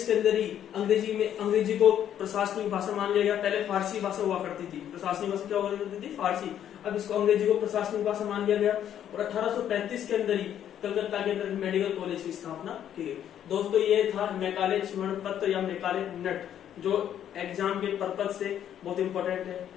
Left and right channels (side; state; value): right; quieter; 10.2 dB